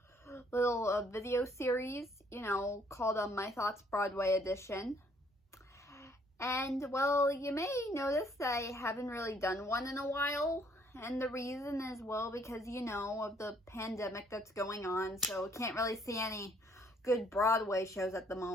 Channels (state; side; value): normal; both; correlation 0.64